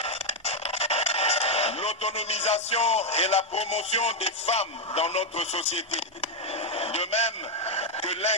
L'autonomisation et la promotion des femmes dans notre société, de même que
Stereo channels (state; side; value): normal; both; correlation 0.01